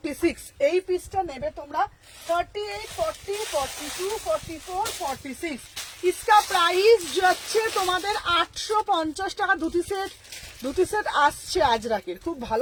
এই পিসটা নেবে তোমরা। 38, 40, 42, 44, 46 इसका प्राइस যাচ্ছে তোমাদের 850 টাকা। ধুতি সেট আসছে আজরাকের, খুব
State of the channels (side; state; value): both; identical; correlation 1.00